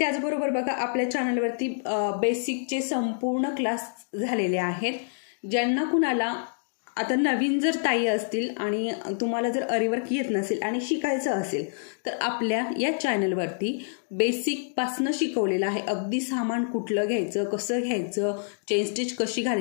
बघा, आपल्या चॅनलवरती बेसिकचे संपूर्ण क्लास झालेले आहेत। ज्यांना कुणाला आता नवीन जर ताई असतील आणि तुम्हाला जर अरीवर्क येत नसेल आणि शिकायचं असेल तर आपल्या या चॅनलवरती बेसिकपासनं शिकवलेलं आहे। अगदी सामान कुठलं घ्यायचं, कसं घ्यायचं, चेन स्टिच कशी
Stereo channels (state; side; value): silent; right; digital silence